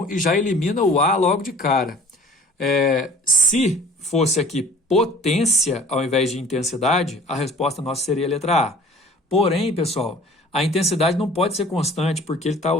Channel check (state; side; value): normal; both; correlation 0.47